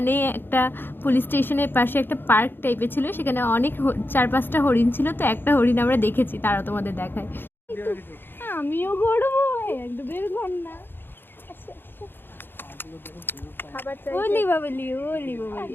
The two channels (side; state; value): right; late; 0.10 ms